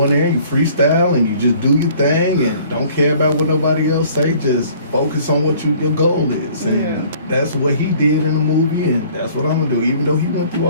in there and you freestyle and you just do your thing and don't care about what nobody else say. Just focus on what your goal is. And Yeah. that's what he did in the movie, and that's what I'm gonna do. Even though he went through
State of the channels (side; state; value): both; inverted; correlation -0.54